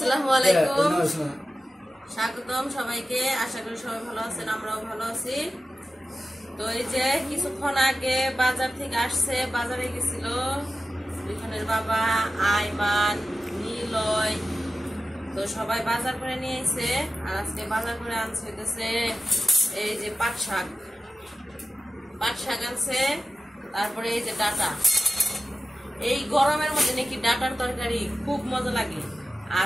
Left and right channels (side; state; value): both; normal; correlation 0.93